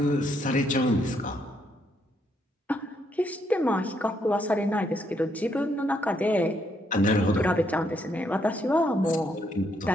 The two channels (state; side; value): normal; both; correlation 0.74